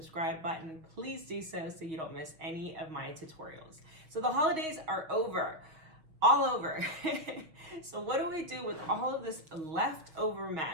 button, please do so you don't miss any of my tutorials. So the holidays are over. All over. So what do we do with all of this leftover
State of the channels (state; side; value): late; left; 6.3 ms